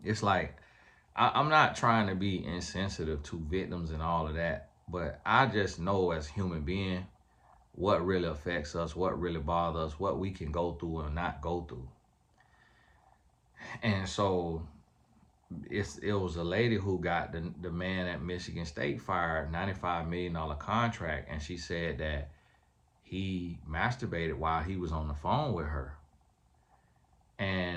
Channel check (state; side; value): identical; both; correlation 1.00